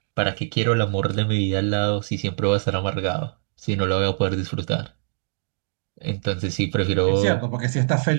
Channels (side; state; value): left; silent; digital silence